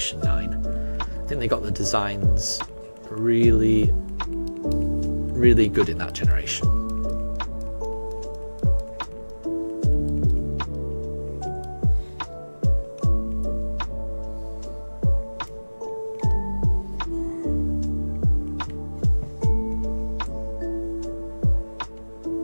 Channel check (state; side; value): inverted; both; correlation -1.00